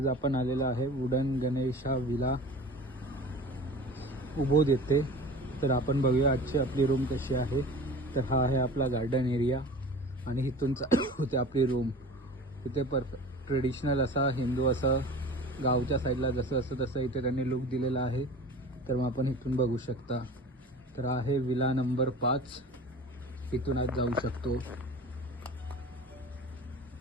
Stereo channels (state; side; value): normal; both; correlation 0.38